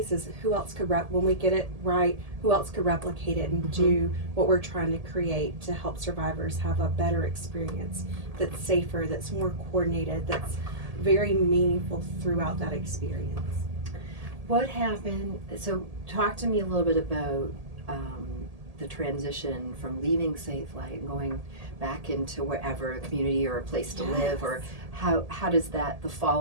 is who else could when we get it right, who else could replicate it and do what we're trying to create to help survivors have a better experience that's safer, that's more coordinated, that's very meaningful throughout that experience. What happened? So talk to me a little bit about the transition from leaving Safelight and going back into wherever, a community or a place to live, or how does the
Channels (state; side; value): late; left; 1.8 ms